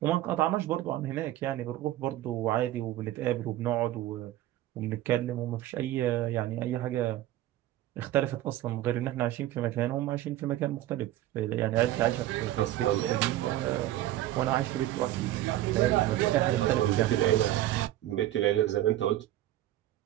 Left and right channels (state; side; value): quieter; left; 14.4 dB